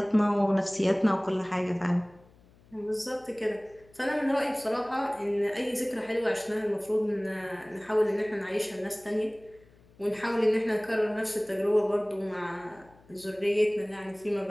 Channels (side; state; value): left; noise; hum, 28 dB below the sound